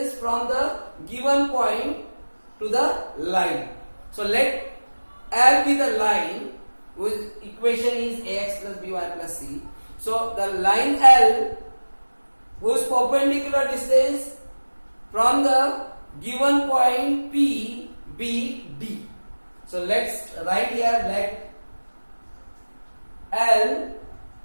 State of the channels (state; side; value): inverted; both; correlation -1.00